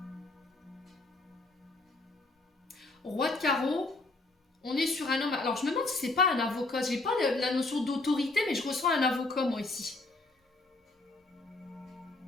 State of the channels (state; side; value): quieter; right; 3.1 dB